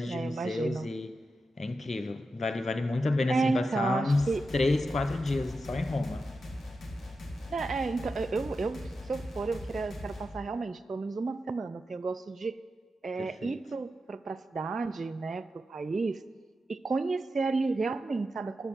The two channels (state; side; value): normal; both; correlation 0.89